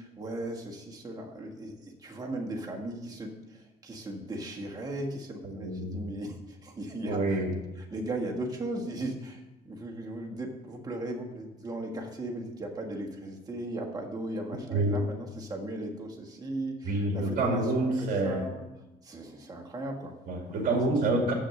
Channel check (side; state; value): both; normal; correlation 0.48